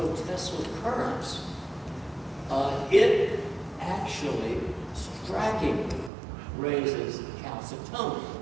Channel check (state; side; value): drops out; left; at 6.1 s